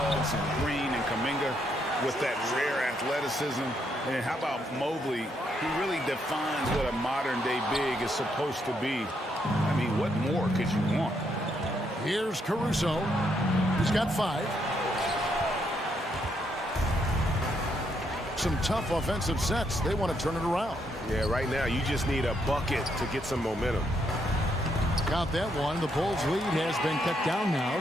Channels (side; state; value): both; normal; correlation 0.76